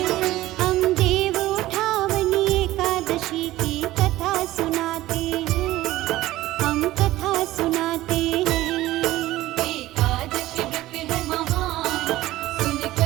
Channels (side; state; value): left; quieter; 16.2 dB